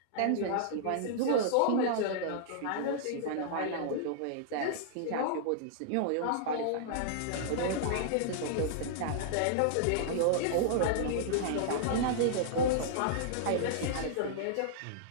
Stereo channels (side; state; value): both; different; correlation -0.01